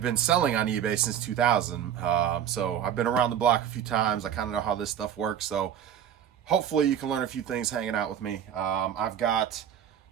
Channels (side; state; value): left; quieter; 9.6 dB